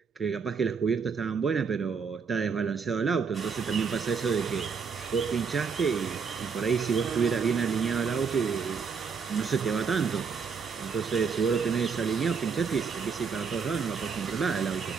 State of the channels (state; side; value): quieter; left; 5.7 dB